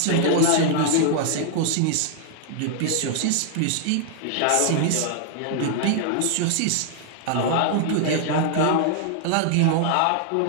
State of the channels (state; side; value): different; both; correlation 0.00